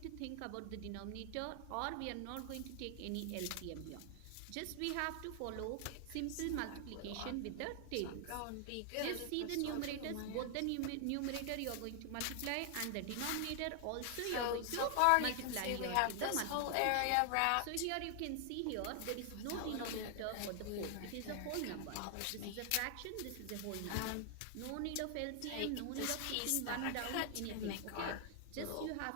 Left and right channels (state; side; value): different; both; correlation 0.00